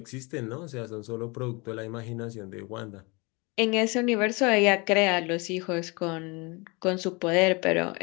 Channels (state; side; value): quieter; right; 27.7 dB